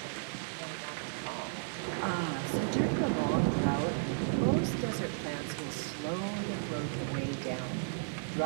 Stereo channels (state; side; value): silent; left; digital silence